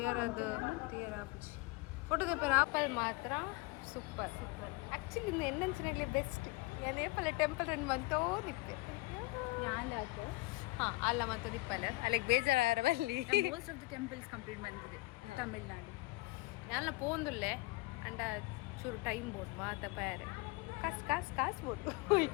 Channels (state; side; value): quieter; right; 22.6 dB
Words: ಅದು ಕ್ಲಿಯರ್ ಆಪುಜಿ ಫೋಟೋ ದೇಪರ್ ಆಪಲ್ ಮಾತ್ರ ಸೂಪರ್ ಆ್ಯಕ್ಚುಲಿ ಇನ್ನು ಎನ್ನಂಚಿನಲ್ಲಿ ಬೆಸ್ಟ್ ಏನೇಪಲ್ಲ ಟೆಂಪಲ್ ರನ್ ಬಂತೋ ನಿಪ್ಪೆ ಹಾಂ ಅಲ್ಲ ಮತ್ತು ನಿಪ್ಪಲ್ಲ ಅಲ್ಲಿಗೆ ಬೇಜಾರ ಬಲ್ಲಿ most of the temples complete ಬಂದಿದೆ ತಮಿಳ್ನಾಡು ಯಾನ ಪೋಂದುಲ್ಲೆ ಅಂಡ ಚೂರು ಟೈಮ್ ಬೋದು ಮಾತ ಪ್ಯಾರೆ ಕಾಸು ಬೋದು